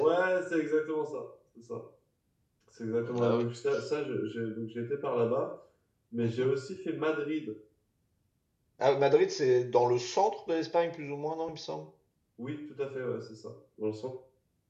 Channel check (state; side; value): identical; both; correlation 1.00